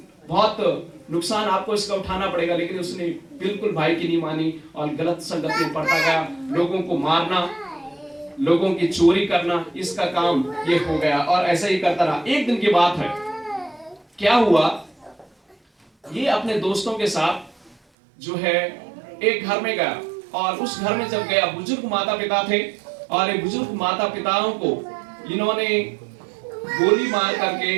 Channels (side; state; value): left; drops out; at 17.8 s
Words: बहुत नुकसान आपको इसका उठाना पड़ेगा। लेकिन उसने बिल्कुल भाई की नहीं मानी और गलत संगत में पड़ता गया। लोगों को मारना, लोगों की चोरी करना, इसका काम ये हो गया, और ऐसा ही करता रहा। एक दिन की बात है, क्या हुआ, ये अपने दोस्तों के साथ जो है एक घर में गया, और उस घर में जब गया, बुजुर्ग माता पिता थे, और ये बुजुर्ग माता पिताओं को इन्होंने गोली मार